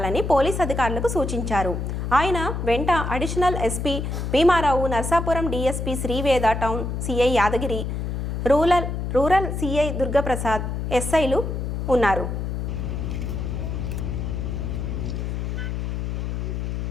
పోలీస్ అధికారులకు సూచించారు. ఆయన వెంట additional SP Bhimarao, Narsapuram DSP Sri Veda, town CI Yadagiri, rural CI Durgaprasad, ఎస్ఐలు ఉన్నారు.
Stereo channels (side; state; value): left; noise; hum, 3 dB below the sound